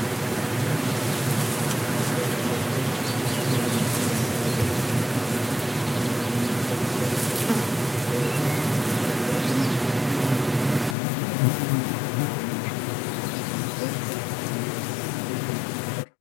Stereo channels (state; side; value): drops out; right; at 11.0 s